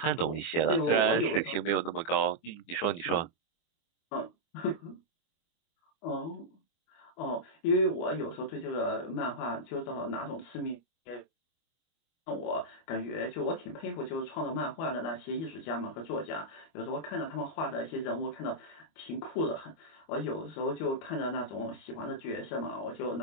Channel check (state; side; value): late; right; 24 ms